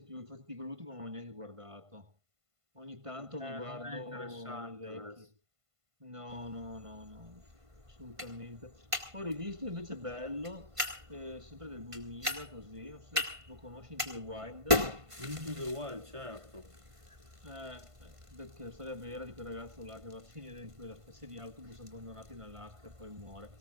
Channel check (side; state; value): left; late; 1.5 ms